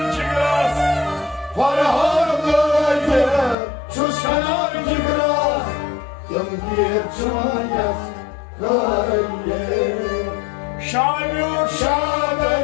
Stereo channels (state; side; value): drops out; right; at 3.6 s